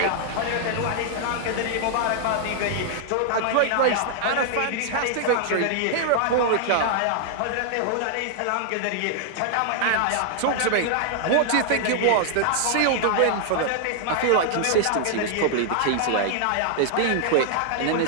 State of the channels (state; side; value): different; both; correlation -0.01